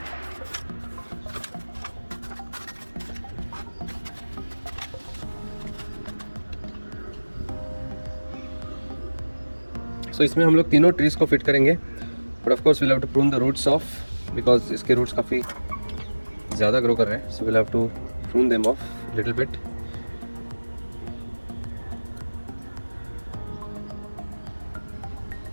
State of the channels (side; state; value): both; inverted; correlation -1.00